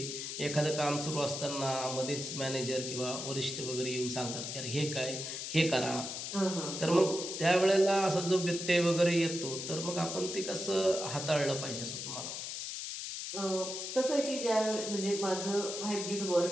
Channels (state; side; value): noise; left; hiss, 5 dB below the sound